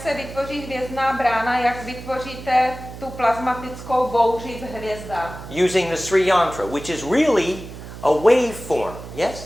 vytvoří hvězdná brána, jak vytvoříte tu plazmatickou bouři v hvězdách. Using the Sri Yantra, which is really a waveform.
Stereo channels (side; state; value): right; noise; hum, 13 dB below the sound